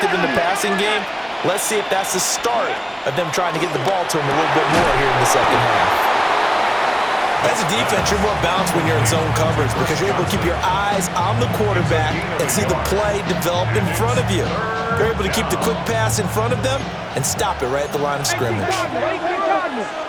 in the passing game. Let's see if that's the start of them trying to get the ball to him a little bit more here in the second half. As a defense, you're more balanced when you're in zone coverage because you're able to keep your eyes on the quarterback and see the play develop in front of you. You're able to keep the quick pass in front of them and stop it right at the line of scrimmage.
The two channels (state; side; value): identical; both; correlation 1.00